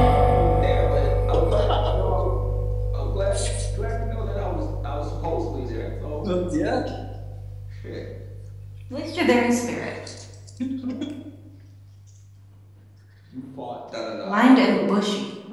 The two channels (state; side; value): identical; both; correlation 1.00